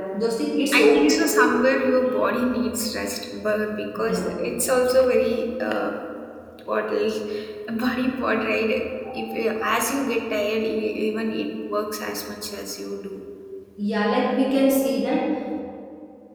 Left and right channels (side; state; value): both; identical; correlation 1.00